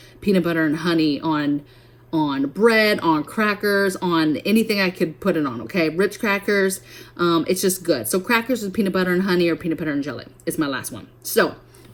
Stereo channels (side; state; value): both; identical; correlation 1.00